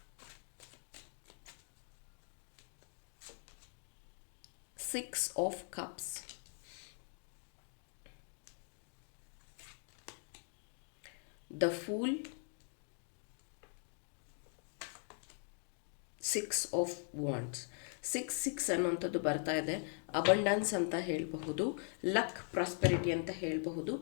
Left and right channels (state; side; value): silent; right; 50 dB below the other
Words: Six of cups, the pool, six of wands. Six ಅನ್ನುವಂಥದ್ದು ಬರ್ತಾ ಇದೆ. ಅಬಂಡನ್ಸ್ ಅಂತ ಹೇಳಬಹುದು, ಲಕ್, ಪ್ರಾಸ್ಪೆರಿಟಿ ಅಂತ ಹೇಳಬಹುದು.